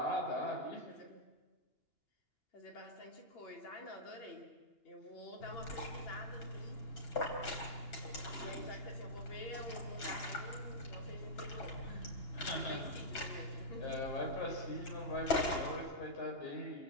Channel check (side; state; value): right; late; 2.9 ms